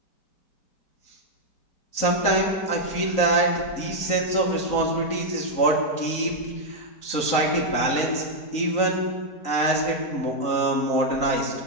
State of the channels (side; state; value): right; late; 4.0 ms